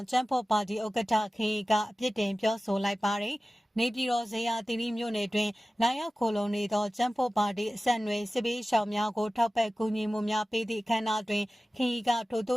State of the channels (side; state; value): both; normal; correlation 0.96